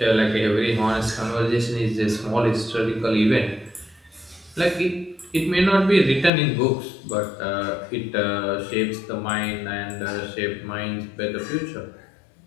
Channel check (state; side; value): drops out; right; at 6.3 s